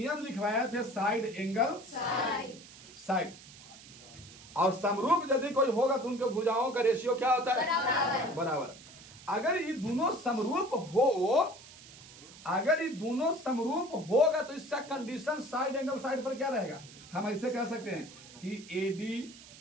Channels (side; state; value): right; noise; hiss, 19 dB below the sound